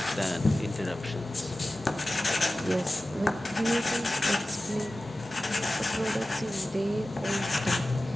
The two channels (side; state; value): both; normal; correlation 0.96